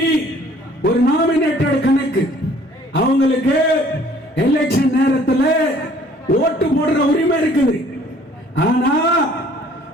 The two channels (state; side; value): normal; both; correlation 0.56